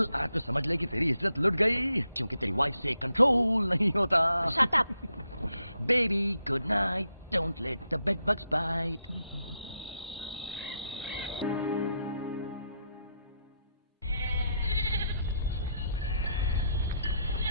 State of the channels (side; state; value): both; inverted; correlation -0.79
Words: आज तो समझ ले कि तेरी इज्जत लुट गई, क्योंकि तेरी वाइफ से कंट्रोल नहीं होता। Shut up. Baby good night, don't let the bed bugs bite.